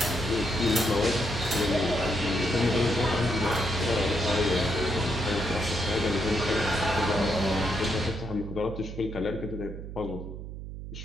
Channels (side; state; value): right; noise; hum, 9 dB below the sound